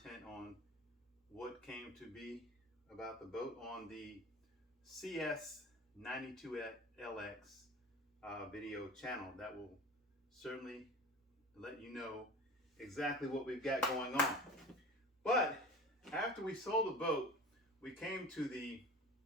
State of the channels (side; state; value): both; normal; correlation 0.37